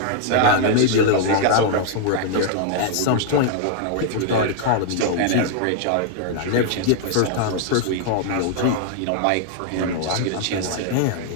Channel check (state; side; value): different; both; correlation 0.00